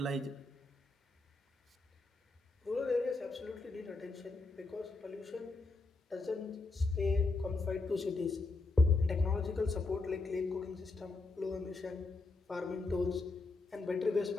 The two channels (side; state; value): right; quieter; 3.4 dB